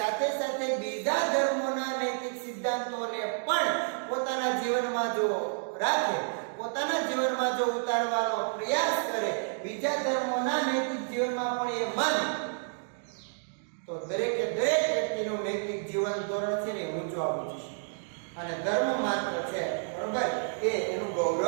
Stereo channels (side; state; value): left; silent; digital silence